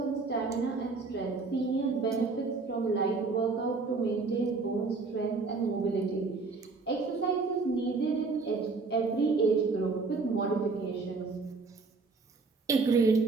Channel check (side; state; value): left; quieter; 4.1 dB